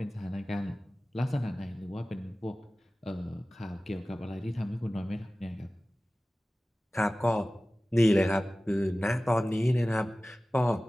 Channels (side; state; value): both; normal; correlation 0.97